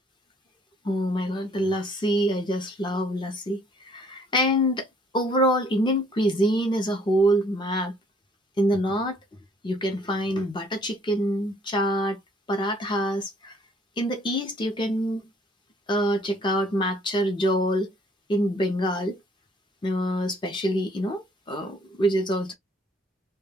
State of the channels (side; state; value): both; normal; correlation 0.61